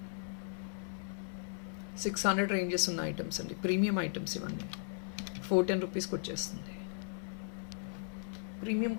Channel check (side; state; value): right; silent; digital silence